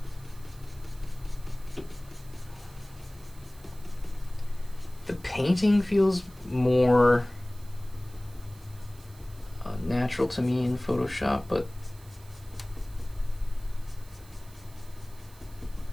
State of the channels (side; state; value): right; noise; hiss, 24 dB below the sound